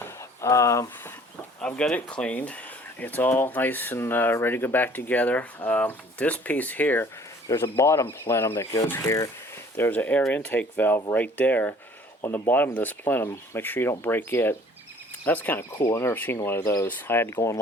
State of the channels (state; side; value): normal; both; correlation 0.53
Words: I've got it cleaned. It's all nice and ready to go back together. This piece here, there's a bottom plenum that goes here. There's an air intake valve right there on the bottom of this plenum. Make sure you don't break it. That's kind of cool. I've never seen one of those. I had to go